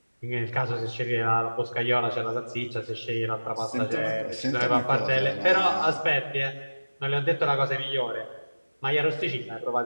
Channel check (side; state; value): both; inverted; correlation -1.00